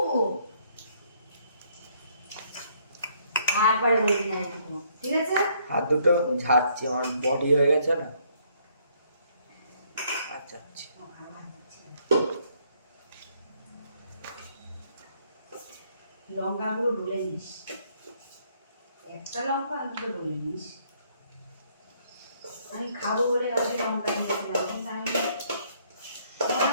তারপরে বলবি না এইটুকু, ঠিক আছে? হাত দুটো ঝাড়ছি, আমার বডি হয়ে গেছে না। আচ্ছা লঙ্কাগুলো ডলে নিস, একটা লঙ্কা অন্তত ডলে নিস। আমি খাবো বলে গাছে লঙ্কা নিয়েছিলাম, কিন্তু আমি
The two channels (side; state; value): both; inverted; correlation -0.67